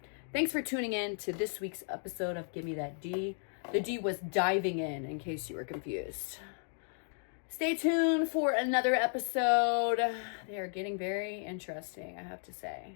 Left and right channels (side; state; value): right; silent; 55 dB below the other